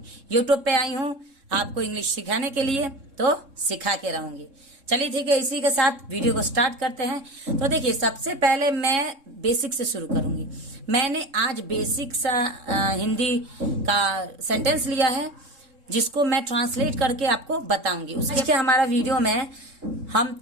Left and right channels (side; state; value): left; late; 3.7 ms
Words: यूट्यूब पे आई हूँ आपको इंग्लिश सिखाने के लिए, तो सिखा के रहूंगी। चलिए ठीक है, इसी के साथ वीडियो को स्टार्ट करते हैं। तो देखिए, सबसे पहले मैं बेसिक से शुरू करूंगी। मैंने आज बेसिक सा हिंदी का सेंटेंस लिया है, जिसको मैं ट्रांसलेट करके आपको बताऊंगी। उसके हमारा वीडियो में हम